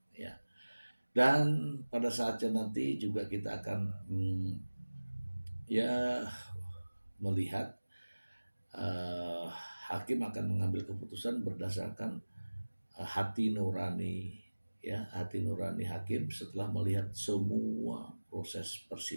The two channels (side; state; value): both; inverted; correlation -1.00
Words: ya. Dan pada saatnya nanti juga kita akan melihat hakim akan mengambil keputusan berdasarkan hati nurani hakim setelah melihat semua proses